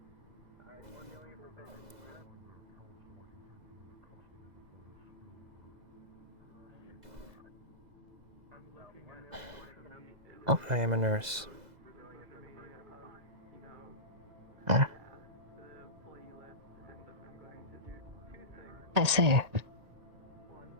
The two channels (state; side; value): late; left; 2.0 ms